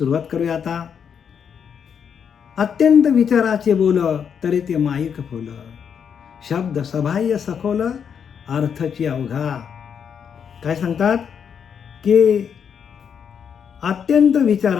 करूया आता. अत्यंत विचाराचे बोल, तरी ते माईक फुल, शब्द सबाह्य सखोल, अर्थची अवघा. काय सांगतात? की अत्यंत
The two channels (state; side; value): quieter; right; 7.4 dB